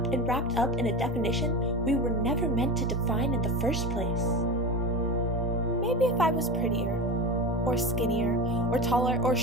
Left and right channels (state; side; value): normal; both; correlation 0.26